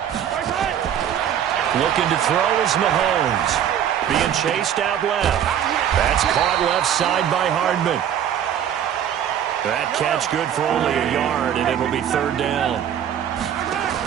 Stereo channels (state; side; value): quieter; left; 9.6 dB